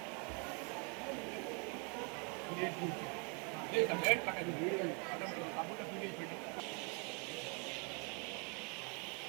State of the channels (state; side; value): quieter; left; 34.9 dB